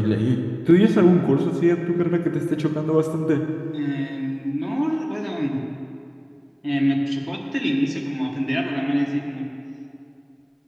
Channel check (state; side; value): identical; both; correlation 1.00